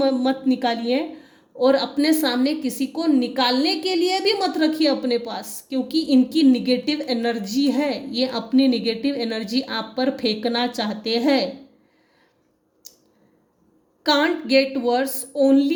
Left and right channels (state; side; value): identical; both; correlation 1.00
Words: निकालिए, और अपने सामने किसी को निकालने के लिए भी मत रखिए अपने पास, क्योंकि इनकी निगेटिव एनर्जी है। ये अपनी निगेटिव एनर्जी आप पर फेंकना चाहते हैं। Can't get worse,